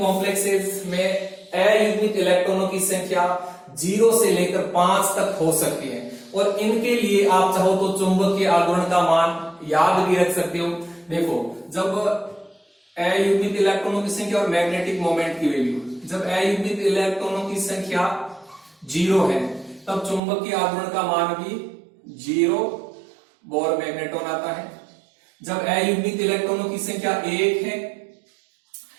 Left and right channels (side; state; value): left; drops out; at 20.2 s